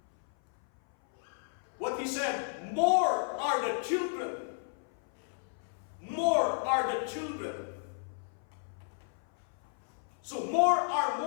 What he said, more are the children. More are the children. So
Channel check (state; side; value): silent; right; 56 dB below the other